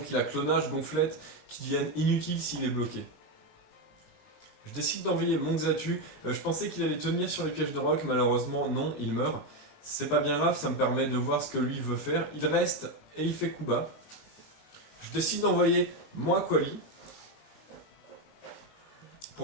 a clonage, gonflette, qui deviennent inutiles s'il est bloqué. Je décide d'envoyer mon Xatu, je pensais qu'il allait tenir sur les pièges de roc, malheureusement non, il meurt. C'est pas bien grave, ça me permet de voir ce que lui veut faire. Il reste et il fait coup bas. Je décide d'envoyer mon Aquali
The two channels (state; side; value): late; right; 19 ms